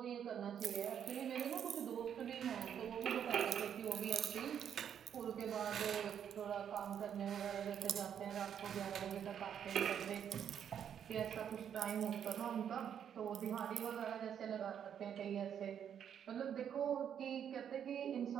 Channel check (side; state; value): left; quieter; 8.7 dB